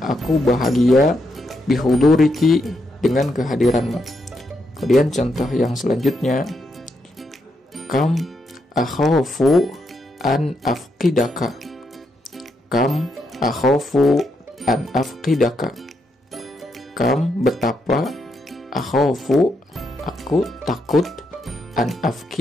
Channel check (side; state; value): both; normal; correlation 0.80